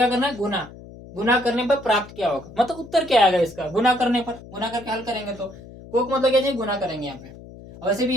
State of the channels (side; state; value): left; noise; hum, 17 dB below the sound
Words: करना है, गुना, गुना करने पर प्राप्त क्या होगा, मतलब उत्तर क्या आएगा इसका, गुना करने पर, गुना करके हल करेंगे तो कोक मतलब क्या चाहिए, गुना करेंगे यहाँ पे, और वैसे